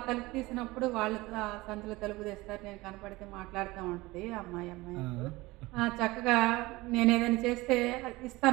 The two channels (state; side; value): quieter; left; 20.8 dB